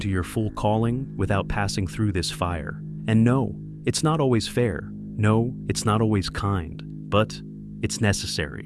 your full calling without passing through this fire. And no, it's not always fair. No, it's not always kind, but it's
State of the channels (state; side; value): identical; both; correlation 1.00